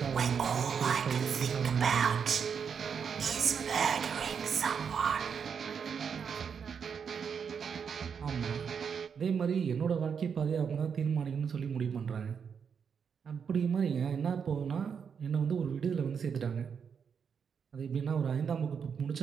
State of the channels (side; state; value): left; quieter; 6.7 dB